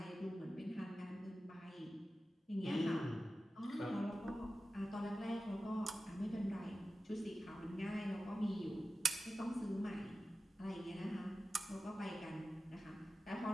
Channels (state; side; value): normal; both; correlation 0.94